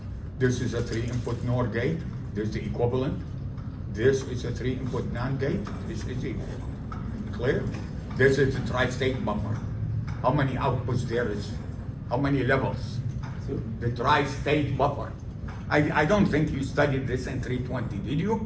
This is a 3-input NOR gate. This is the equivalent. This is a 3-input NAND gate. This is equal. Clear? This is a tri-state buffer. How many outputs there is? How many levels? The tri-state buffer. I don't think you studied this in 320, did you?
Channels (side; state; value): both; identical; correlation 1.00